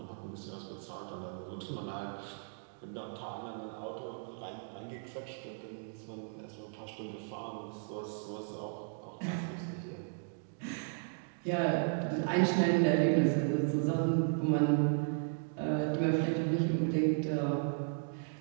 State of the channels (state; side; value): silent; left; digital silence